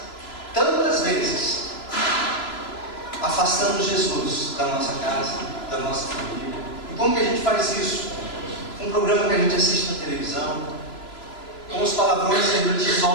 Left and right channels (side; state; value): right; late; 3.0 ms